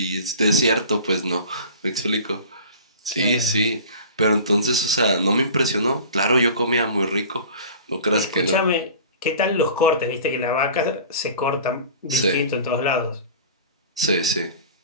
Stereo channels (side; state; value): both; inverted; correlation -0.41